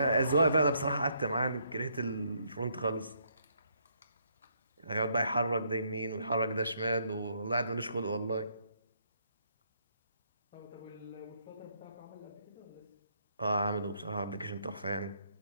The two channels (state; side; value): inverted; both; correlation -0.72